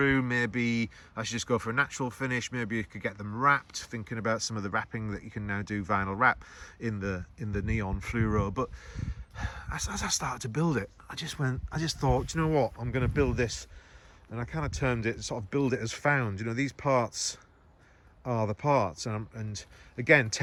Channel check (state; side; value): identical; both; correlation 1.00